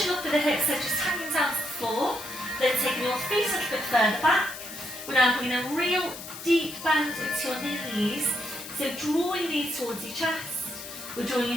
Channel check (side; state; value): left; noise; hiss, 11 dB below the sound